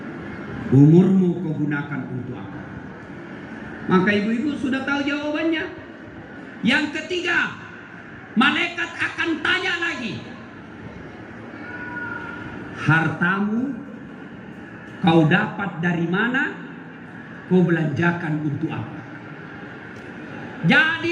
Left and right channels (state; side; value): identical; both; correlation 1.00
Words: Umurmu kau gunakan untuk apa? Maka ibu-ibu sudah tahu jawabannya. Yang ketiga, malaikat akan tanya lagi. Hartamu kau dapat dari mana? Kau belanjakan untuk apa?